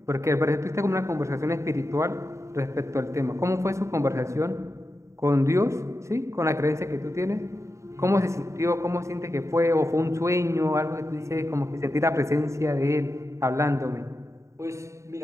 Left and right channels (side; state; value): left; late; 0.14 ms